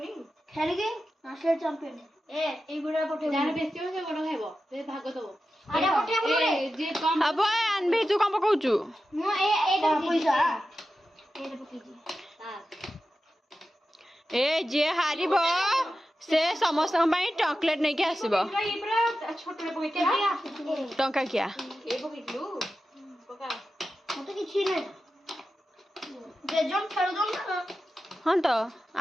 খেলিগে ন্যাশনাল চ্যাম্পিয়ন এ এই গুড়া পঠে जाने बेसी हो से बड़ खाइबो से भाग दबो আরে পঠে বলে ए जे कम अब अनबी तू कम पकाउचु মো এটা পয়সা এটা পকেজি हां ए जे हारिबो से समस्त ପାଇଁ चॉकलेट नहीं के आसीबो ई पूरा छोटरे पकेती टंका किया ए पकेतलु पका মতো কিছু নাই বেজন খেলুন না हां तो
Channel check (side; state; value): both; normal; correlation 0.92